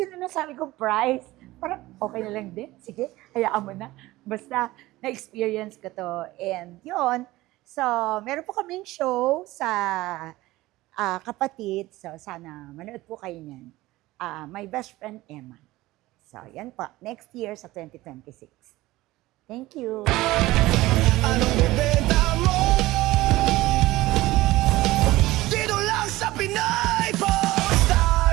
na nasabi kong price? Parang okay na lang din. Sige, hayaan mo na. Basta na-experience ko to. And yun, so meron po kaming show sa Kapatid. So sana manood po kayo niyan. My Best Friend Emma. So, yan po. Next year sa 2026. Thank you.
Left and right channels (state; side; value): quieter; left; 18.1 dB